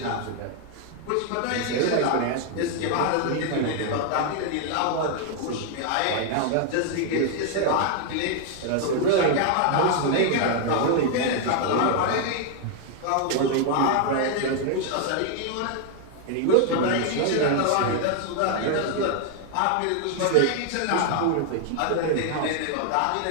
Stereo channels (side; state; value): both; different; correlation 0.00